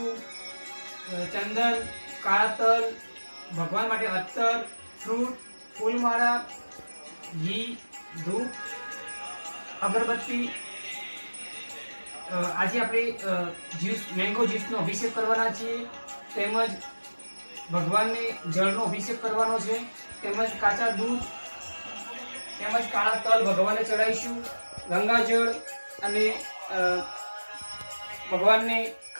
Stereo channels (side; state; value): both; inverted; correlation -1.00